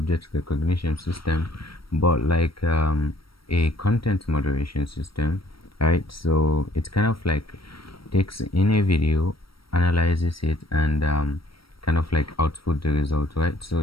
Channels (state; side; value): late; right; 0.75 ms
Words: recognition system, but like a content moderation system, right? So it's kind of like takes in a video, analyzes it, and kind of like output the result, right?